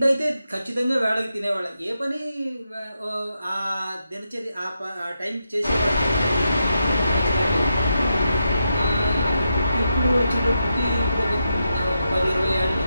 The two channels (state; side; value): inverted; both; correlation -0.84